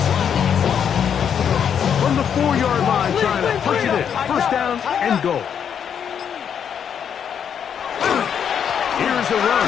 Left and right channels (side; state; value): right; quieter; 8.0 dB